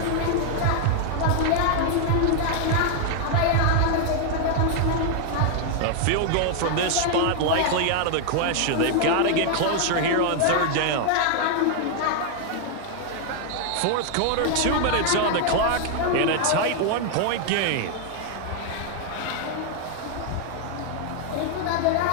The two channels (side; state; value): both; different; correlation 0.00